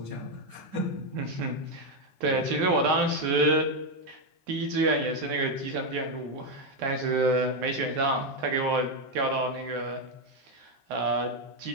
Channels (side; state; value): left; late; 11 ms